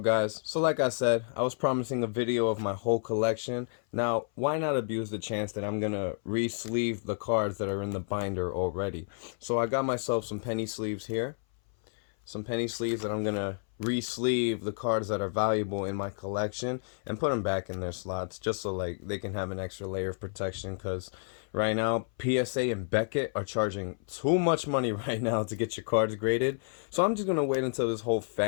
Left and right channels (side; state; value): right; silent; 58 dB below the other